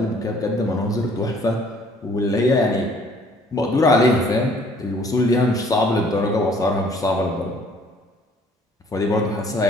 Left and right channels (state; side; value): normal; both; correlation 0.58